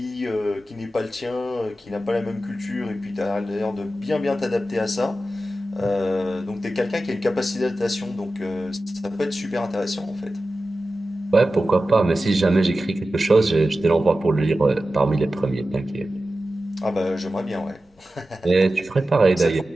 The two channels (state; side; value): normal; both; correlation 0.93